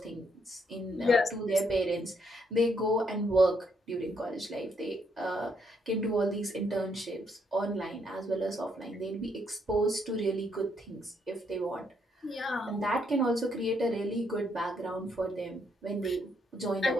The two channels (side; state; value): both; normal; correlation 0.73